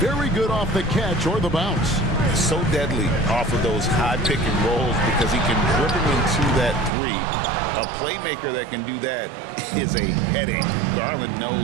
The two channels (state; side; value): drops out; left; at 6.9 s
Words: good off the catch or the bounce. So deadly off of those high pick and rolls because he can dribble into that 3. A playmaker that can do that is a headache. Garland